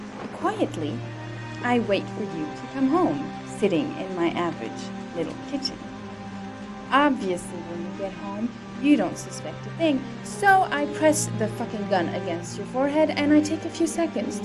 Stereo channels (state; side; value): identical; both; correlation 1.00